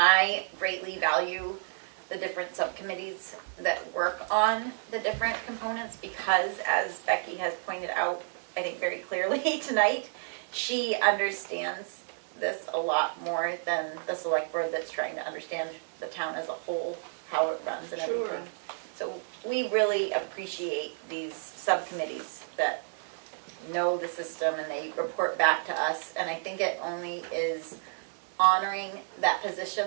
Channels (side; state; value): left; silent; digital silence